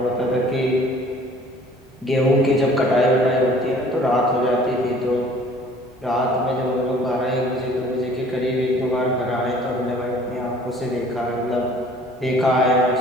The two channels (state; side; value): normal; both; correlation 0.53